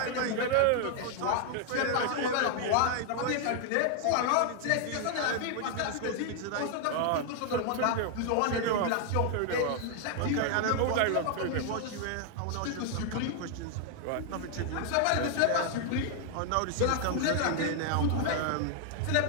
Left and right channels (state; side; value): different; both; correlation 0.00